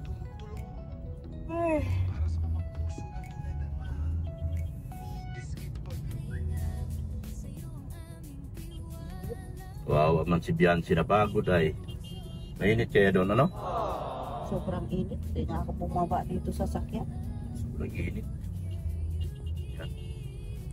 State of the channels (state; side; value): identical; both; correlation 1.00